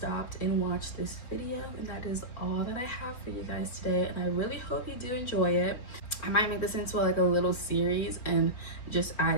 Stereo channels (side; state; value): right; late; 4.2 ms